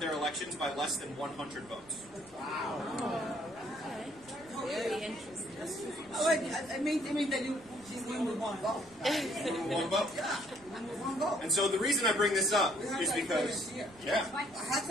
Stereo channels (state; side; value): noise; right; rumble, 25 dB below the sound